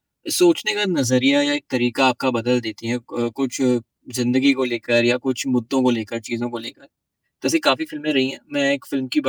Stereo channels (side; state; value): both; identical; correlation 1.00